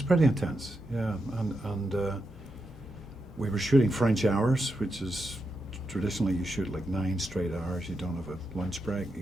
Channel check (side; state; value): both; normal; correlation 0.85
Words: pretty intense, yeah. And we were shooting French hours, which is traditionally you shoot like 9 straight hours. You don't have a lunch break.